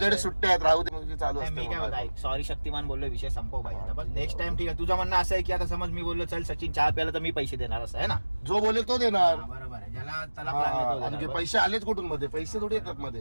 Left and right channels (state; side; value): inverted; both; correlation -1.00